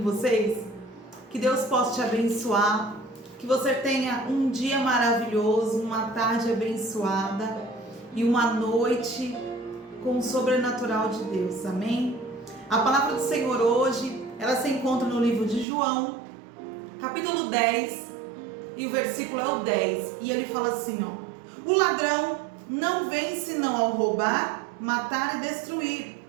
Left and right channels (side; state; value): left; drops out; at 15.7 s